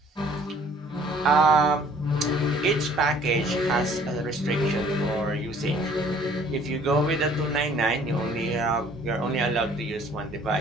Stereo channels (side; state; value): both; normal; correlation 0.56